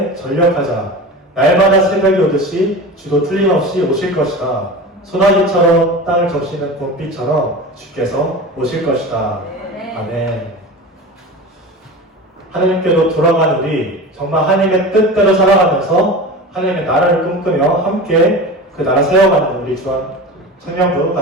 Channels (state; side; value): normal; both; correlation 0.31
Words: 전력하자. 날마다 새벽이 오듯이 주도 틀림없이 오실 것이다. 소나기처럼 땅을 적시는 봄비처럼 주께서 오실 것이다. 아멘. 하나님께로 돌아가는 우리 정말 하나님의 뜻대로 살아가면서 하나님의 나라를 꿈꾸며 함께 그 나라 세워가는 우리 주한